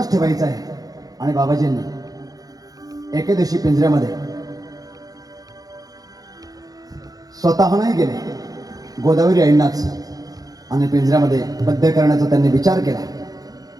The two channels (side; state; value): left; late; 0.18 ms